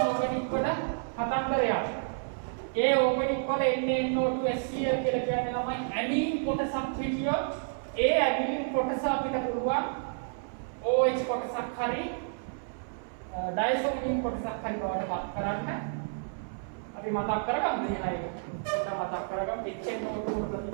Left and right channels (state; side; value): silent; left; 58 dB below the other